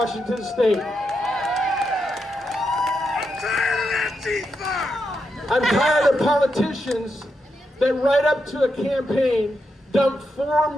State. I'm tired of politicians that right up to a campaign dump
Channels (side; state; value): both; normal; correlation 0.84